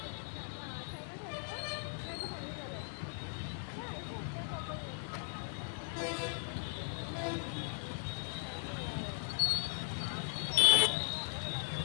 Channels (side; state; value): right; silent; digital silence